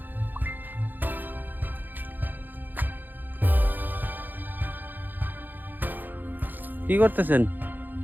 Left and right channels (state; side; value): late; left; 0.088 ms